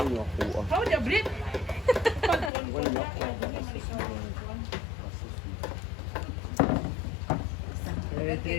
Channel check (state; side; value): drops out; right; at 2.5 s